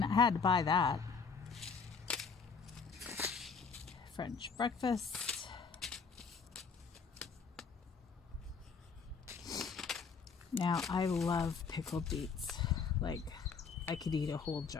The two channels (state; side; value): quieter; right; 5.4 dB